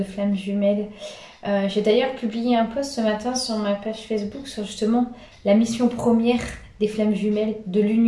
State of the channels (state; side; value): identical; both; correlation 1.00